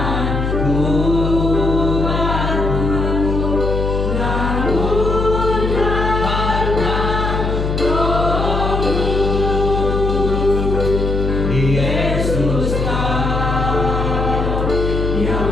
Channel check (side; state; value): left; noise; hum, 1 dB below the sound